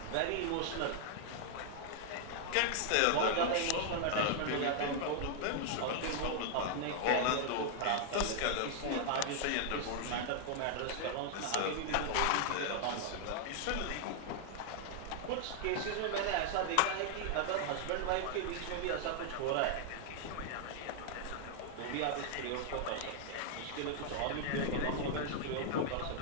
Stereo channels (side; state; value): both; different; correlation -0.01